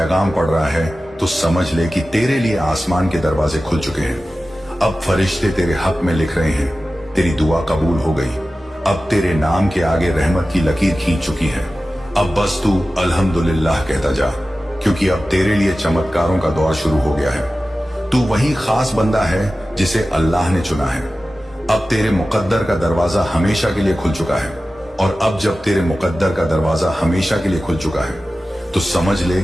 पढ़ रहा है तो समझ ले कि तेरे लिए आसमान के दरवाजे खुल चुके हैं। अब फरिश्ते तेरे हक में लिख रहे हैं, तेरी दुआ कबूल हो गई। अब तेरे नाम के आगे रहमत की लकीर खींच चुकी है। अब बस तू अल्हम्दुलिल्लाह कहता जा, क्योंकि अब तेरे लिए चमत्कारों का दौर शुरू हो गया है। तू वही खास बंदा है जिसे अल्लाह ने चुना है। अब तेरे मुकद्दर का दरवाजा हमेशा के लिए खुल चुका है। और अब जब तेरे मुकद्दर का दरवाजा हमेशा के लिए खुल चुका है तो समझ ले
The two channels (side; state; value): both; normal; correlation 0.95